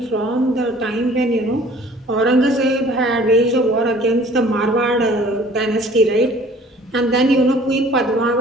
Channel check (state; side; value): normal; both; correlation 0.52